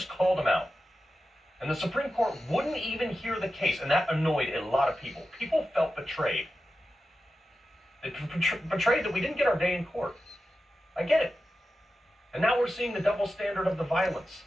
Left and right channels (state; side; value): normal; both; correlation 0.92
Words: called them out. And the Supreme Court wouldn't even hear the case, and that annoyed a lot of people. People felt betrayed. They betrayed that we didn't get our day in court. I get it. And now we're seeing the double standard of the violence.